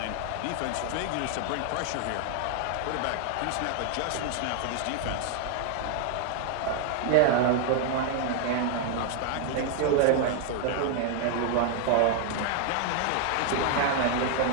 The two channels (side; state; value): both; different; correlation 0.00